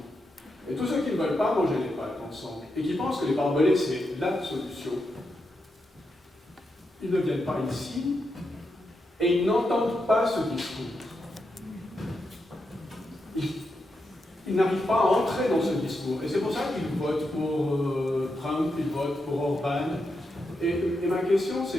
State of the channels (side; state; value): both; normal; correlation 0.85